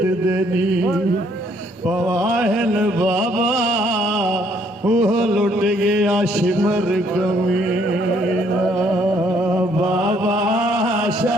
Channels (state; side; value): normal; both; correlation 0.66